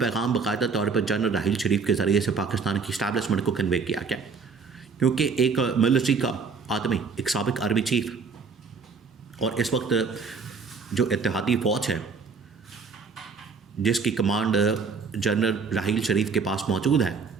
باقاعدہ طور پر جنرل راحیل شریف کے ذریعے سے پاکستان کی اسٹیبلشمنٹ کو کنوے کیا گیا، کیونکہ ایک ملٹری کا آدمی، ایک سابق آرمی چیف، اور اس وقت جو اتحادی فوج ہے جس کی کمانڈ جنرل راحیل شریف کے پاس موجود ہے،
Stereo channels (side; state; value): left; quieter; 5.0 dB